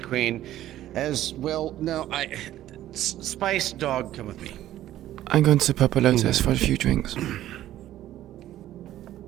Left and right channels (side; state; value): left; quieter; 13.3 dB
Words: Queen. As well, no, Spice Dog, come with me. I'm going to Purple Lotus for a few drinks.